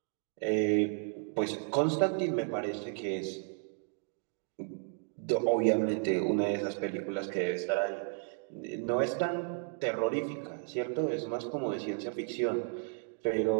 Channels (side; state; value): left; silent; 56 dB below the other